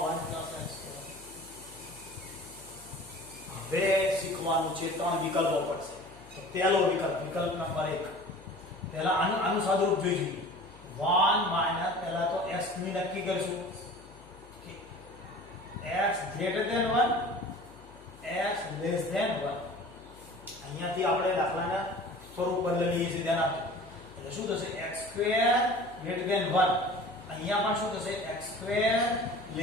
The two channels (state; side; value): noise; left; hum, 23 dB below the sound